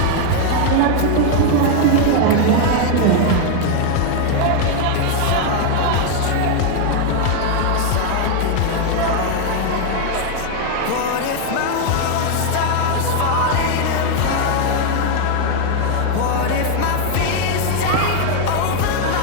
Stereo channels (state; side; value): different; both; correlation 0.00